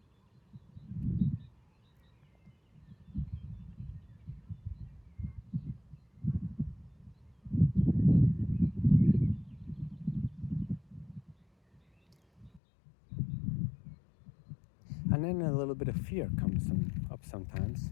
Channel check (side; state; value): right; drops out; at 12.6 s